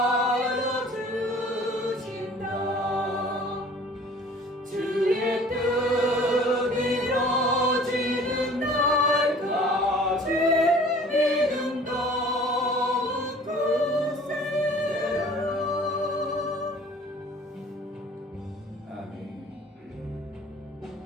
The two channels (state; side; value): normal; both; correlation 0.49